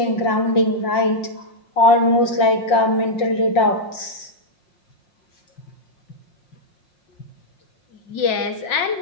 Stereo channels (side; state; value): right; late; 5.6 ms